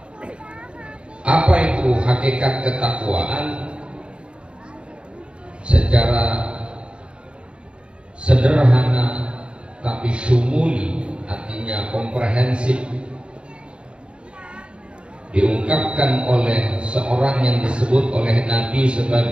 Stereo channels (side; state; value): left; late; 0.056 ms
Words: Apa itu hakikat ketakwaan? Secara sederhana tapi syumuli, artinya komprehensif, diungkapkan oleh seorang yang disebut oleh Nabi